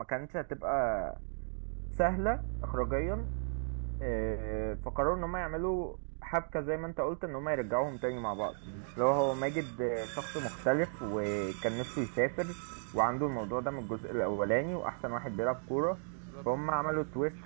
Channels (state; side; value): silent; left; digital silence